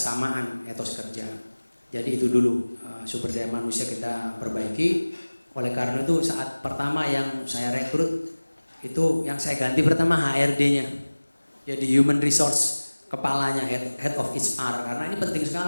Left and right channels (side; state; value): both; inverted; correlation -1.00